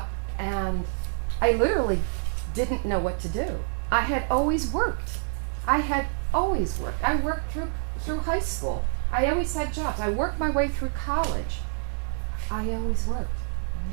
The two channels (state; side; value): silent; left; digital silence